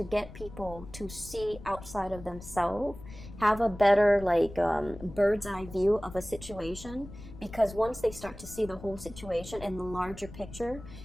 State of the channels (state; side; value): noise; left; rumble, 15 dB below the sound